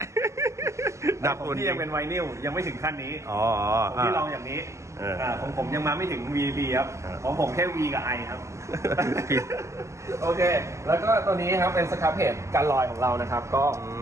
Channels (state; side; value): late; left; 0.14 ms